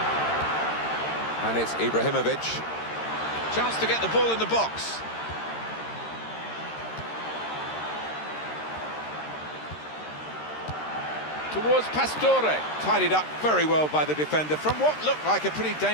And it's Ibrahimovic. Chance to get the ball in the box. Towards Pastore. Tidied up very well by the defender from what looked like a pretty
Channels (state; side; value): late; right; 13 ms